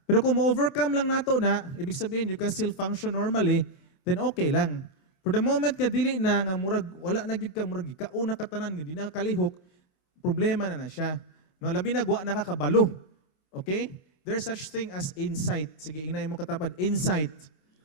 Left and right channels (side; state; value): right; late; 27 ms